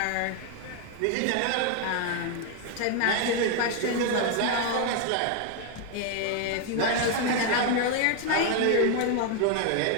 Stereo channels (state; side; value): different; both; correlation 0.01